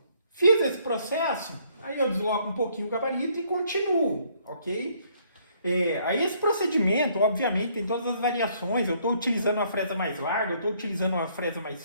Fiz esse processo, aí eu desloco um pouquinho o gabarito e continuo, ok? Aí esse procedimento, obviamente, tem todas as variações. Eu estou utilizando uma fresa mais larga, eu estou utilizando uma fresa mais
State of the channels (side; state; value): both; inverted; correlation -0.66